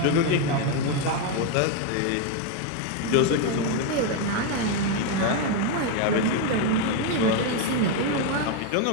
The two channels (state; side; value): different; both; correlation 0.01